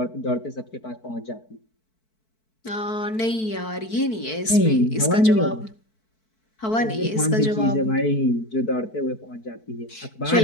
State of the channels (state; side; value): late; right; 4.6 ms